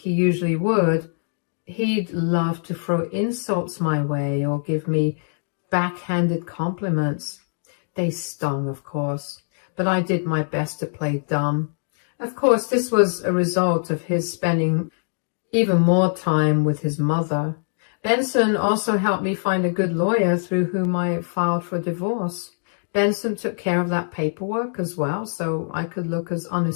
usually would, he'd love to throw insults my way or give me backhanded compliments. They stung, of course, but I did my best to play dumb. Of course, this was a result of his spending even more time with his mother. Benson also helped me find a good lawyer through whom I filed for divorce. Benson took care of that paperwork as well, so I could look as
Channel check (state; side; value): silent; right; digital silence